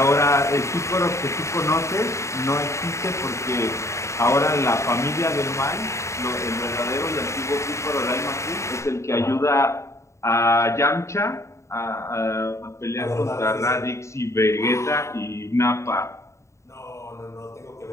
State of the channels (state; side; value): late; right; 0.14 ms